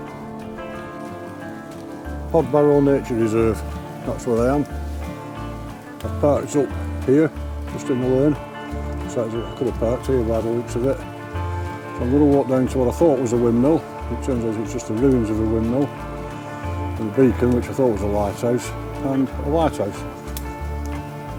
Hodbarrow Nature Reserve, that's where I am. I've parked up here, just in the lane. So I could have parked here by the looks of it. So I'm going to walk down to what I thought was a windmill. It turns out it's just the ruins of a windmill. And a beacon, which I thought was a lighthouse, and a lighthouse.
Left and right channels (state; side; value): identical; both; correlation 1.00